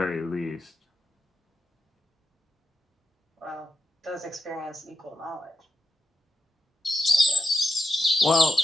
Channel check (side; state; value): both; normal; correlation 0.83